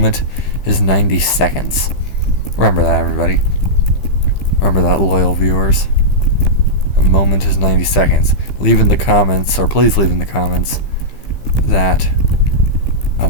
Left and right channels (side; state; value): right; late; 15 ms